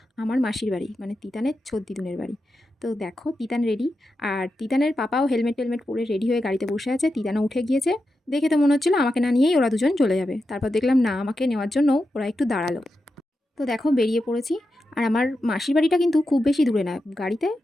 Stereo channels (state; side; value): normal; both; correlation 0.89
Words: আমার মাসির বাড়ি, মানে তিতানের ছোদ্দিদুনের বাড়ি। তো দেখো তিতান রেডি, আর তিতানের পাপাও হেলমেট টেলমেট পরে রেডি হয়ে গাড়িতে বসে আছে। তিতানও উঠে গিয়েছে। দেখে তো মনে হচ্ছিল আমাকে না নিয়েই ওরা দুজন চলে যাবে। তারপর দেখলাম না, আমাকে নেওয়ার জন্য ওরা একটু দাঁড়ালো। তো দেখো বেরিয়ে পড়েছি। আর আমার মাসির বাড়িটা কিন্তু খুব বেশি দূরে না, গাড়িতে